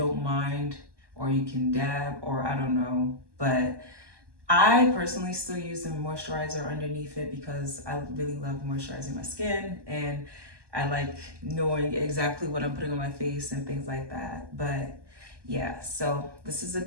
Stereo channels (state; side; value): late; left; 1.2 ms